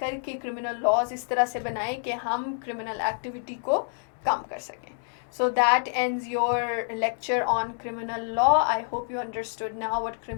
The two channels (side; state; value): right; silent; 60 dB below the other